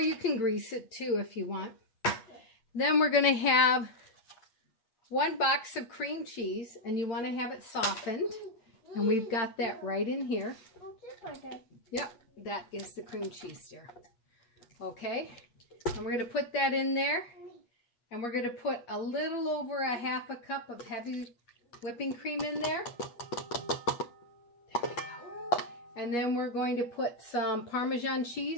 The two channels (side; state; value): right; late; 8.4 ms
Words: you can grease it too if you want. Then we're going to have 1 box of cream cheese. And you want to have it softened. And we've got that right in here. Yep. That is the cream cheese there. Okay. And we're going to put that in there. And we're going to put a little over a half a cup of heavy whipping cream in there. There we go. And then we're going to put some Parmesan